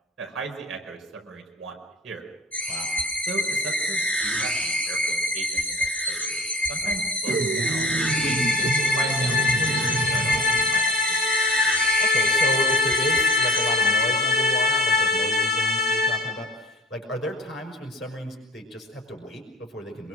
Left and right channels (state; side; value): normal; both; correlation 0.41